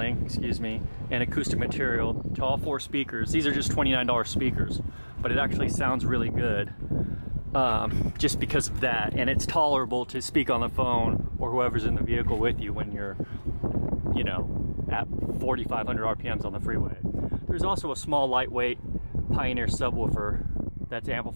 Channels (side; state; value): both; inverted; correlation -1.00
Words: and acoustic material to all 4 speakers. These are just $29 speakers, but it actually sounds really good just because of that. And it's tolerable to speak on the phone or whoever's in the vehicle with you when you're, you know, at 4,500 RPMs on the freeway. There's also a small lightweight Pioneer subwoofer that's